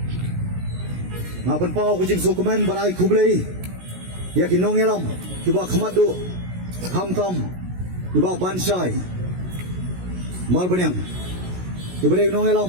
Ngapan pau kujing sukumen barai kublei, ya kinong elam. Kiba khamadu hamtam kiba bansai mal banyang kiba dei nong elam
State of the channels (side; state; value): left; late; 16 ms